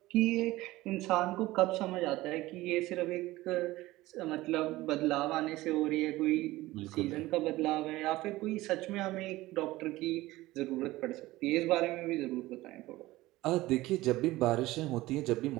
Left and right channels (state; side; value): quieter; left; 18.1 dB